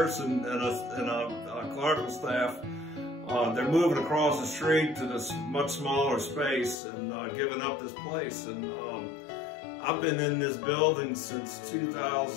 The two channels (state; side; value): drops out; right; at 6.8 s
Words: and a clerical staff, they're moving across the street to this much smaller space and giving up this place. And I've been in this building since